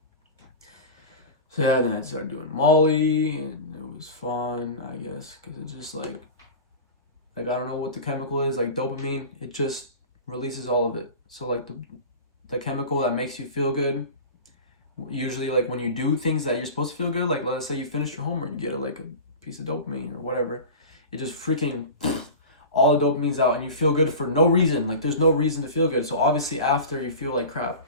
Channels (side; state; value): both; inverted; correlation -0.32